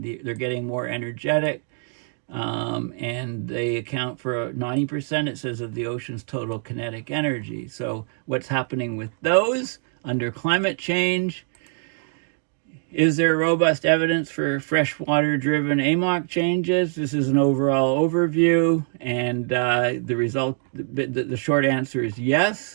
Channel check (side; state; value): left; silent; 63 dB below the other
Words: they're getting more energetic. And they account for 90%, it says, of the ocean's total kinetic energy. So what's happening with those under climate change? Is there robust evidence for freshwater-driven AMOC changes? This is an overall overview, and the short answer is